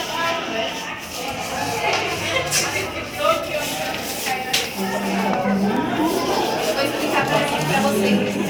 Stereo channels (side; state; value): both; identical; correlation 1.00